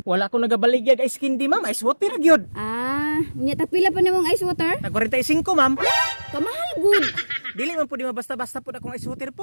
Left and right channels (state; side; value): inverted; both; correlation -1.00